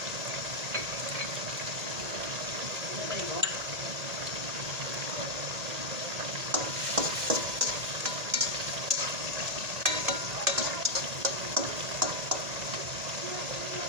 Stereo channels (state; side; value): late; left; 1.8 ms